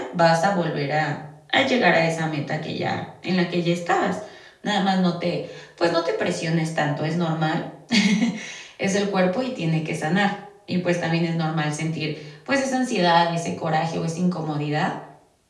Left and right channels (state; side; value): identical; both; correlation 1.00